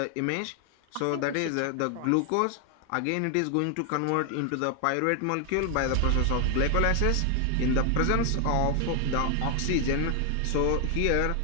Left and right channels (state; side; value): different; both; correlation 0.00